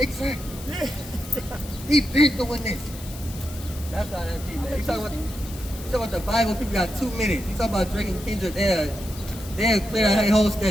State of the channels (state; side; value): noise; left; hiss, 15 dB below the sound